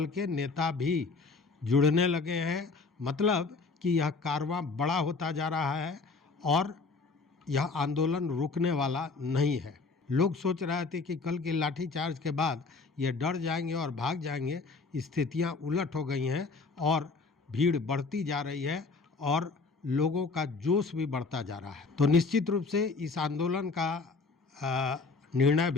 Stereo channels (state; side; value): quieter; right; 4.1 dB